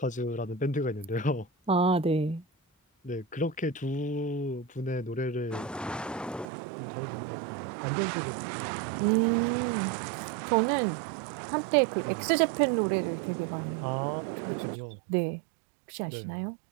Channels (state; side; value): drops out; left; at 6.5 s